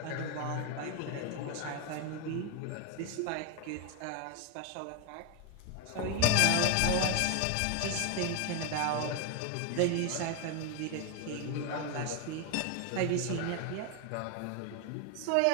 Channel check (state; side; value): different; both; correlation 0.01